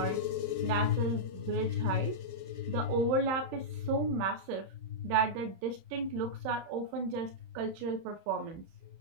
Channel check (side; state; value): left; late; 31 ms